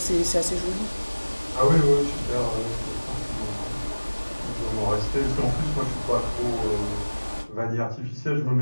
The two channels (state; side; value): inverted; both; correlation -1.00